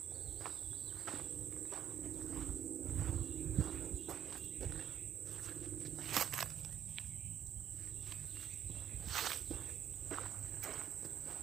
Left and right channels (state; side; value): quieter; left; 9.9 dB